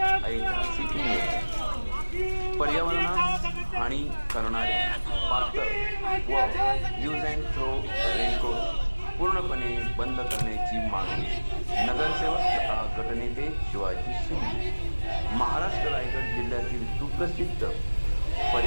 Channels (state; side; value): inverted; both; correlation -1.00